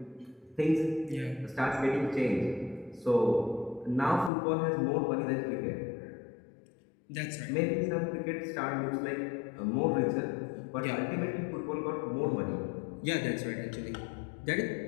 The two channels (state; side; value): drops out; right; at 4.3 s